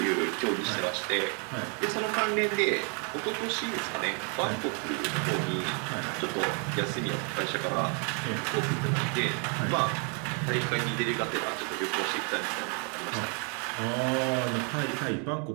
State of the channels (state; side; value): quieter; left; 38.0 dB